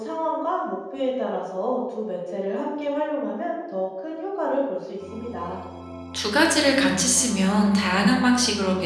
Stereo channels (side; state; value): both; identical; correlation 1.00